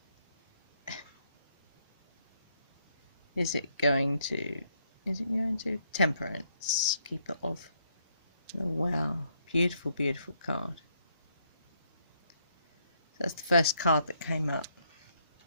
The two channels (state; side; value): inverted; both; correlation -0.73